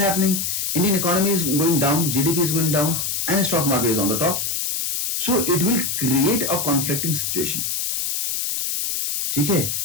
Indian economy is going down, GDP is going down and stock market is on the top. So it will create a conflicting situation. ठीक है.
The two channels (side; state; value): left; noise; hiss, 1 dB below the sound